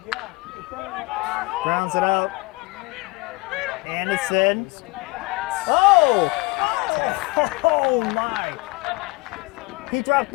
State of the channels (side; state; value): right; quieter; 24.5 dB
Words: Grounds it out. Anderson. Oh! Oh my! He dropped